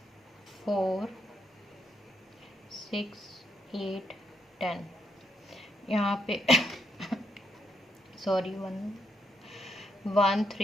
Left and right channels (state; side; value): normal; both; correlation 0.77